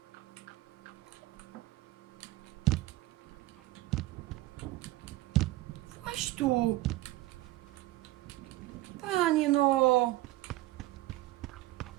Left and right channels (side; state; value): left; quieter; 17.8 dB